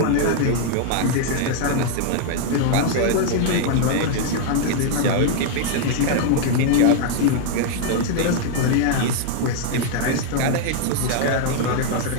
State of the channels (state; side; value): different; both; correlation 0.00